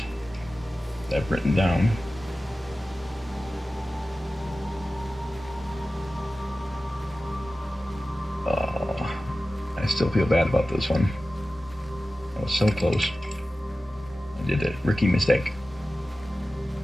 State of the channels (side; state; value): both; normal; correlation 0.95